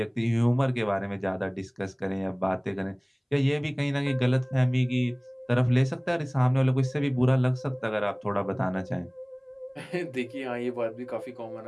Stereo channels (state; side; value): identical; both; correlation 1.00